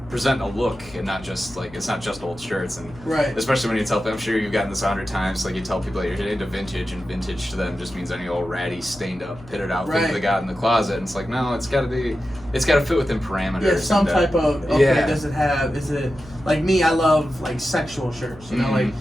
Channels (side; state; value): left; noise; hum, 20 dB below the sound